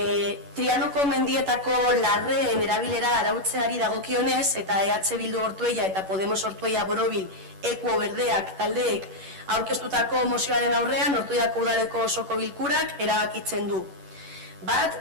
Trianoko mendietako larreen erabilera arautzeari dagokionez eta EH Bildu Ortuella eta Podemos Ortuella Borobil Ekuo Berdeak taldeek aurkeztutako mozioaren aurrean Ortuellako udaleko osoko bilkurak erabakitzen du. Bat,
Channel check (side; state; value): left; late; 11 ms